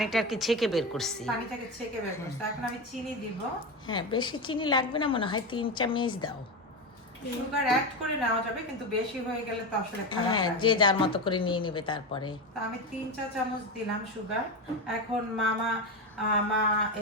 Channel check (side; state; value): both; normal; correlation 0.17